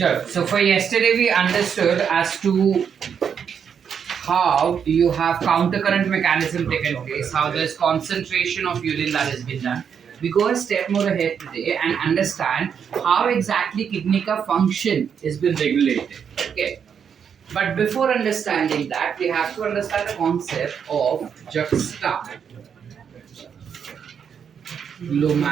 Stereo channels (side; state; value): left; quieter; 7.4 dB